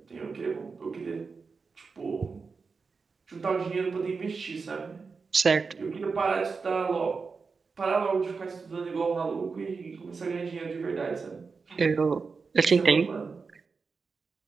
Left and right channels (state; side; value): quieter; left; 4.8 dB